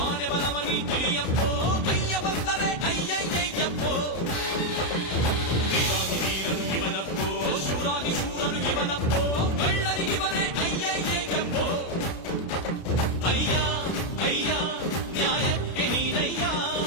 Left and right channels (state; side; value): late; right; 32 ms